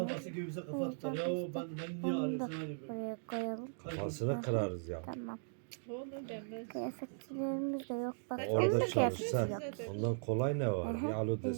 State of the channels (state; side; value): silent; left; digital silence